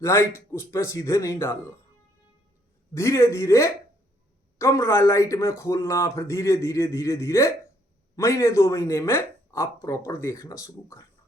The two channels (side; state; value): both; normal; correlation 0.68